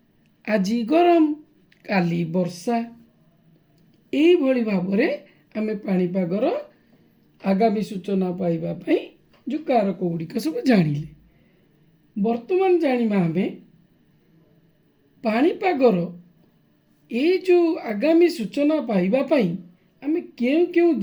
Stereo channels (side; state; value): both; identical; correlation 1.00